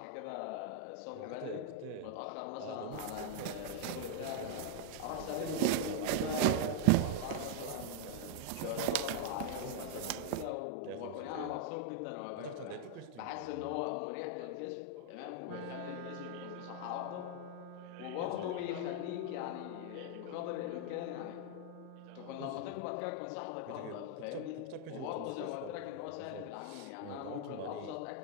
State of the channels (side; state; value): both; different; correlation 0.00